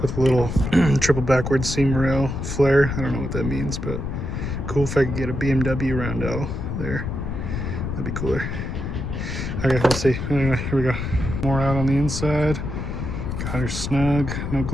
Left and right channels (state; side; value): noise; left; rumble, 4 dB below the sound